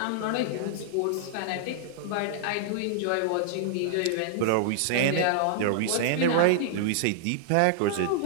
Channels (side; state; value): both; different; correlation -0.01